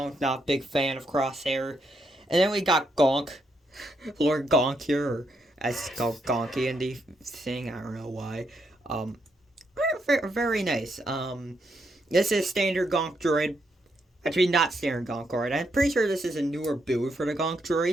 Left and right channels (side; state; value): both; normal; correlation 0.79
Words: not a big fan of Crosshair. And then we got Gonk. Lord Gonk here, or as it's called Gonky in the thing. I don't know why. Very nice. This is standard Gonk droid. Actually, not standard Gonk droid. I'm pretty sure this is a newer build for the Gonk